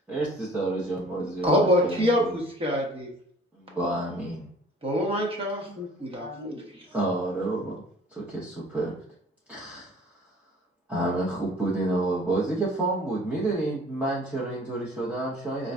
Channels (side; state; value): both; normal; correlation 0.50